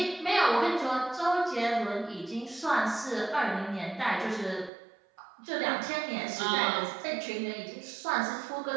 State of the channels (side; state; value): left; drops out; at 4.7 s